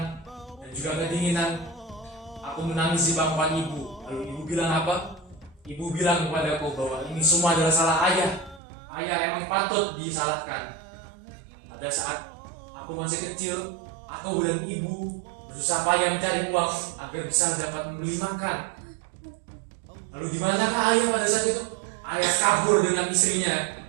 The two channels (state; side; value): drops out; left; at 8.6 s